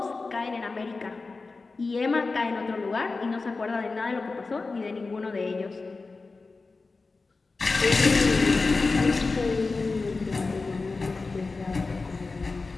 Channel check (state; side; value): quieter; right; 3.9 dB